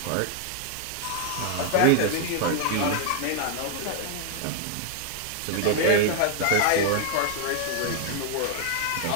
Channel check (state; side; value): different; both; correlation 0.00